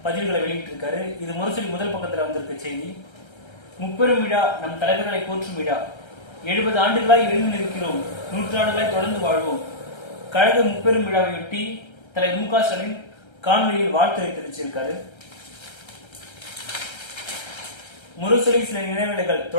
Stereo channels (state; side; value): late; right; 1.3 ms